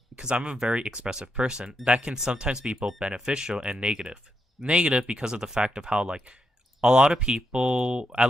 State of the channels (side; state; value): both; normal; correlation 0.82